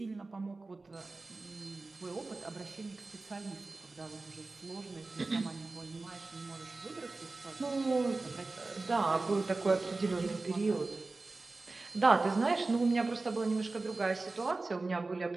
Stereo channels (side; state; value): left; quieter; 3.5 dB